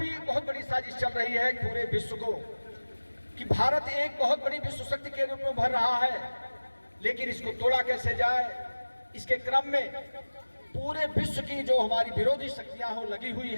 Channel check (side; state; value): both; inverted; correlation -1.00